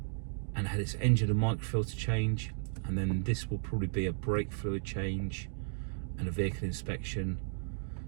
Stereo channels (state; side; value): silent; left; digital silence